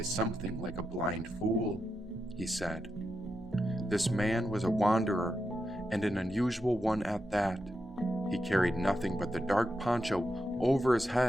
something like a blind fool, he said. This man was a wanderer, and an unusual one at that. He carried nothing but the dark poncho over his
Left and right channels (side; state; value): both; normal; correlation 0.86